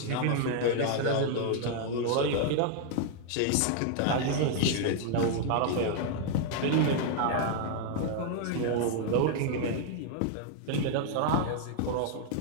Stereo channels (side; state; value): both; different; correlation 0.00